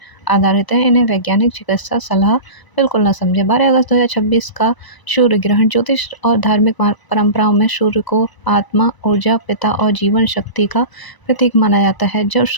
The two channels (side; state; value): right; late; 1.0 ms